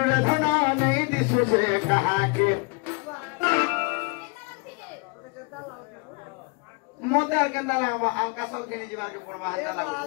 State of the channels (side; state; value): right; quieter; 30.6 dB